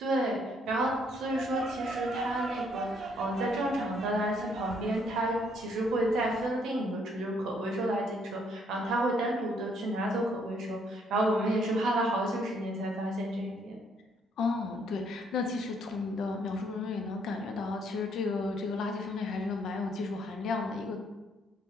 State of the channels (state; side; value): normal; both; correlation 0.68